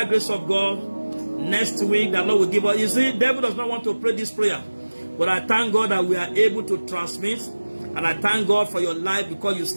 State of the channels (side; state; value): both; inverted; correlation -1.00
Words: grace of God, next week the Lord will give us. You see, the devil does not want to pray this prayer, but I thank God that we are able to transmit, and I thank God for your life because you